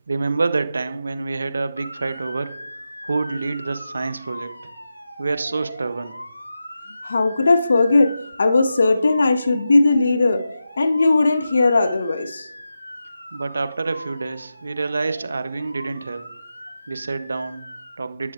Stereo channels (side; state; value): both; inverted; correlation -0.91